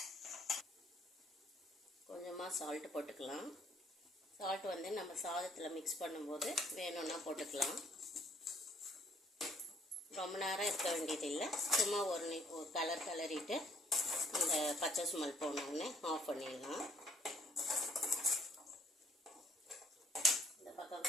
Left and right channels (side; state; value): both; normal; correlation 0.63